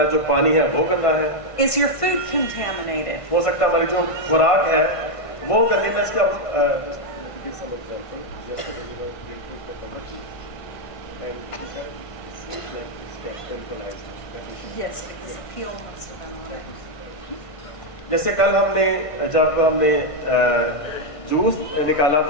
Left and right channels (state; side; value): late; right; 1.5 ms